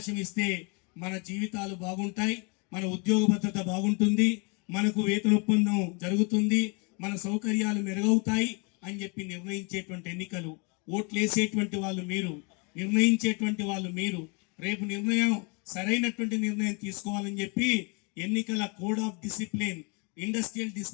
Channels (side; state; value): right; quieter; 32.7 dB